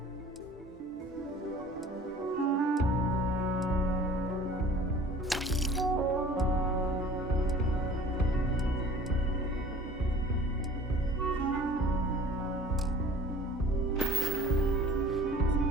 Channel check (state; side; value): normal; both; correlation 0.47